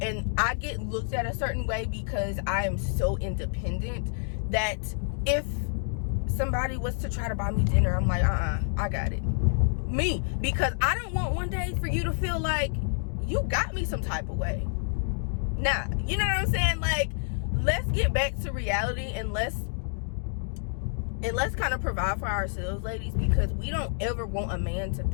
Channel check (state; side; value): silent; right; 59 dB below the other